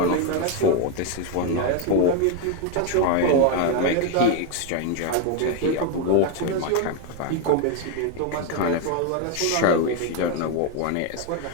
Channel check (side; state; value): both; different; correlation 0.01